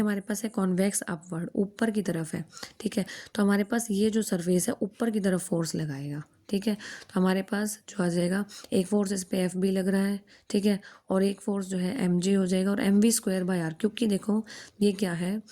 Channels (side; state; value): both; identical; correlation 1.00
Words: पास है कॉन्वेक्स अपवर्ड, ऊपर की तरफ है। ठीक है, तो हमारे पास ये जो सरफेस है ऊपर की तरफ फोर्स लगाएगा। ठीक है, तो हमारे पास जो आ जाएगा एक फोर्स इस पे FB लग रहा है। ठीक है, और एक फोर्स जो है mg हो जाएगा, और mv²/r, क्योंकि देखो ये क्या है